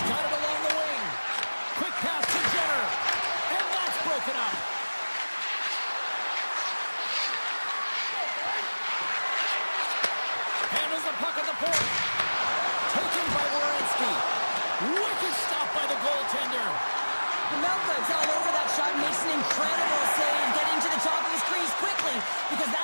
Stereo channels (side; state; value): both; inverted; correlation -1.00